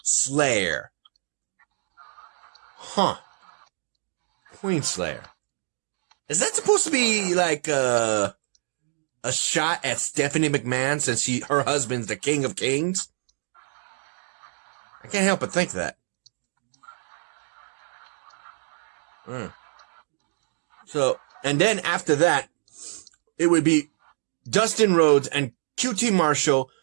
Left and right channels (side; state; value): left; silent; digital silence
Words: Slayer. Queen Slayer. Is that supposed to be like a shot at Stephanie McMahon since her husband's the King of Kings? I can't help but think that. So, and then after that, it would be Dustin Rhodes and QT Marshall